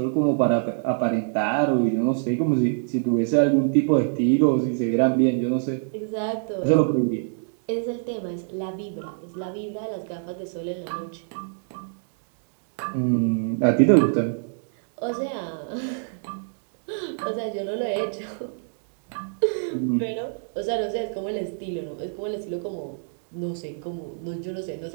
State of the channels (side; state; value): left; silent; digital silence